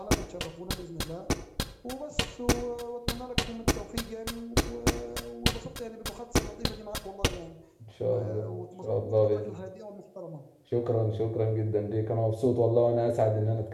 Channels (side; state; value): both; identical; correlation 1.00